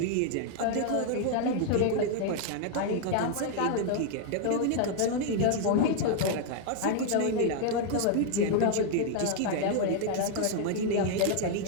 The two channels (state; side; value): different; both; correlation 0.00